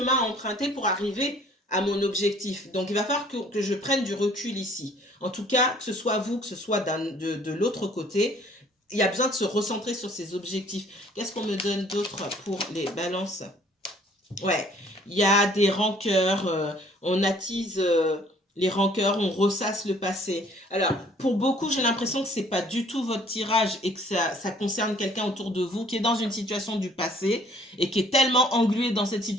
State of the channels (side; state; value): both; normal; correlation 0.57